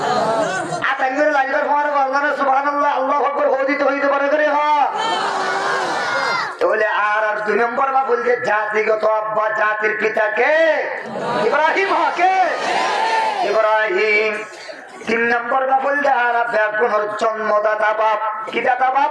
আতাঙ্গের লাইবার পরে বললেন সুবহানাল্লাহ আল্লাহু আকবার হদিত হইতে পারে করে হ তাহলে আর 2 নম্বর বা বলতে জাতিগত আব্বা জাতির পিতাকে ইব্রাহিম হকে ইব্রাহিম 3 নম্বর বা বলতে আর ব্যাগুনের জন্মদাতা বাপ কি দাতা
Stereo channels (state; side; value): identical; both; correlation 1.00